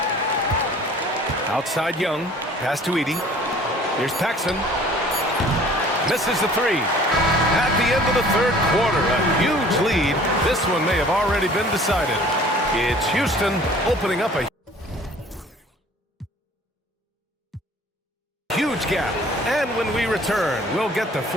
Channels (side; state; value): both; normal; correlation 0.50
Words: Outside Young. Pass to Edey. Here's Paxson. Misses the 3. At the end of the third quarter, a huge lead. This one may have already been decided. It's Houston opening up a huge gap. And when we return, we'll get the